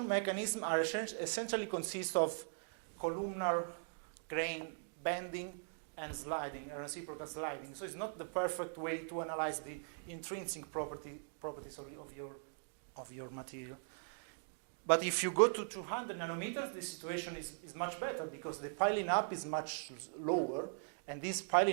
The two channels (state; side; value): silent; left; digital silence